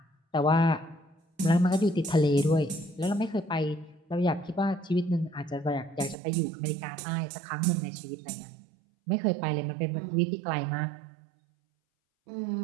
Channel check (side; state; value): left; drops out; at 6.2 s